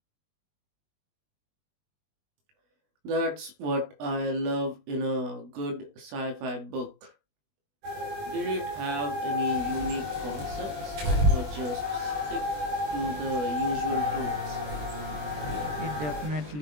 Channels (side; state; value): left; late; 20 ms